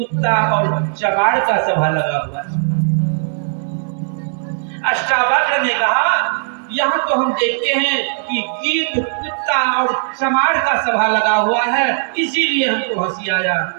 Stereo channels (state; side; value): silent; left; digital silence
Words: और चमार का सभा लगा हुआ है। अष्टावक्र ने कहा, यहाँ तो हम देखते हैं कि गीध, कुत्ता और चमार का सभा लगा हुआ है, इसीलिए हमको हंसी आया